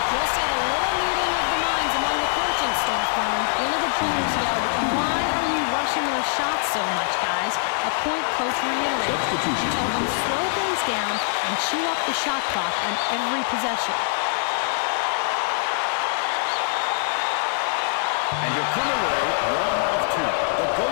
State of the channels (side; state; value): right; silent; digital silence